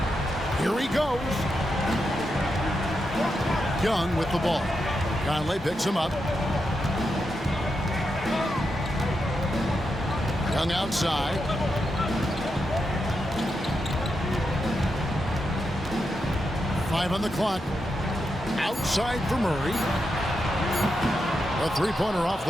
Here he goes. Young with the ball. Conley picks him up. Young outside. Five on the clock. Outside for Murray. A three-pointer off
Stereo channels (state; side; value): normal; both; correlation 0.86